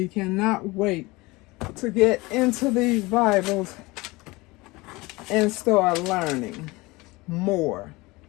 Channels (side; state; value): right; quieter; 22.6 dB